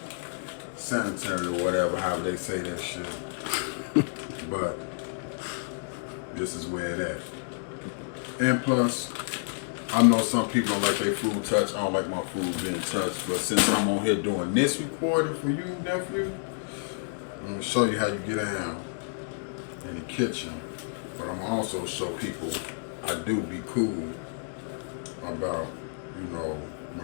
sanitary or whatever, however they say that shit. But this is where it at. And plus, I know some people don't like their food touched. I don't like my food being touched. But since I'm on here doing this recording for you, nephew, I'm going to show you how you get down in the kitchen. But I'm going to also show people I do be cool about,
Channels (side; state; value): right; silent; digital silence